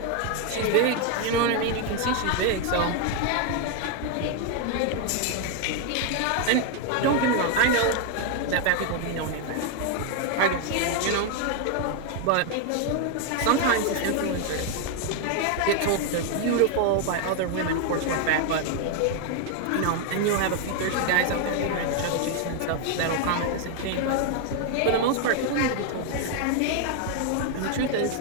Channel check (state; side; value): different; both; correlation 0.01